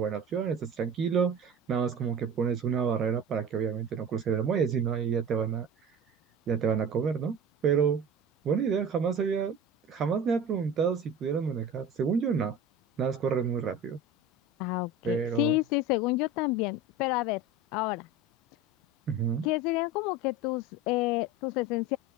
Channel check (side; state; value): both; normal; correlation 0.33